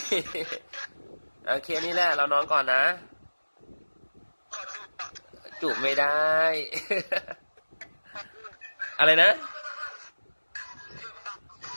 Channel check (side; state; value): both; inverted; correlation -1.00